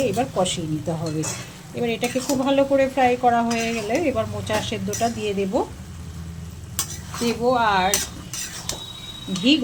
এবার কষিয়ে নিতে হবে। এবার এটাকে খুব ভালো করে ফ্রাই করা হয়ে গেলে এবার মোচা সেদ্ধটা দিয়ে দেব। আর ঘি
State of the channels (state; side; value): identical; both; correlation 1.00